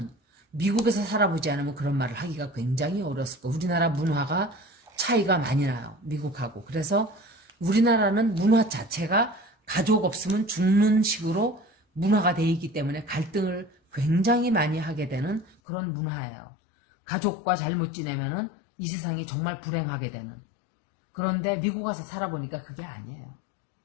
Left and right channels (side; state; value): right; drops out; at 15.6 s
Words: 미국에서 살아보지 않으면 그런 말을 하기가 굉장히 어렸을 거예요. 우리나라 문화가 차이가 많이 나요. 미국하고. 그래서 우리나라는 문화 자체가 가족 없으면 죽는 식으로 문화가 돼 있기 때문에 갈등을 굉장히 많이 하게 되는 그런 문화예요. 가족과 잘못 지내면은 이 세상이 정말 불행하게 되는. 그런데 미국 가서 살아보니까 그게 아니에요.